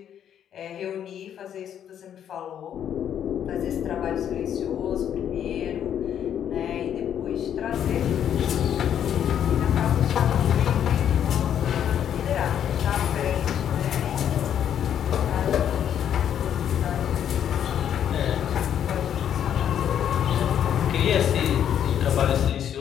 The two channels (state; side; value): quieter; right; 9.5 dB